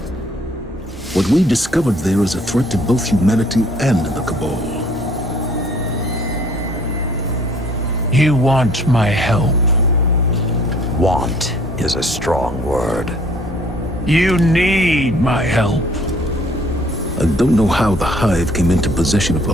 What we discovered there is a threat to both humanity and the Cabal. You want my help. Want is a strong word. You need my help. I don't know how the Hive came into possession of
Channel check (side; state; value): both; normal; correlation 0.58